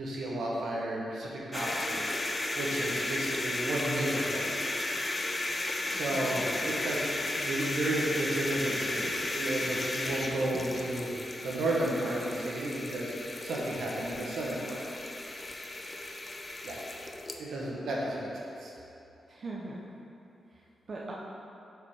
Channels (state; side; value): normal; both; correlation 0.85